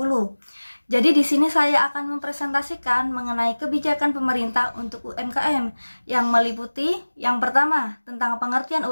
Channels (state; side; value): inverted; both; correlation -1.00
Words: Jadi di sini saya akan mempresentasikan mengenai kebijakan pemerintah untuk UMKM yang meliputi yang pertama tentang pengertian